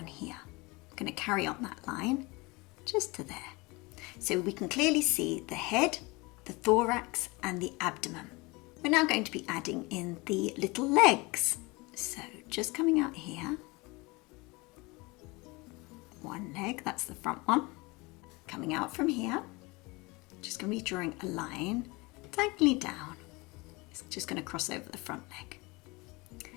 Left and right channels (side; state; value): right; quieter; 24.9 dB